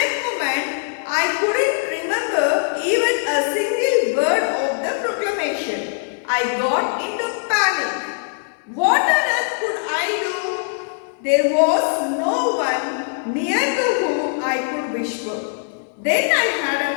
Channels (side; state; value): right; silent; digital silence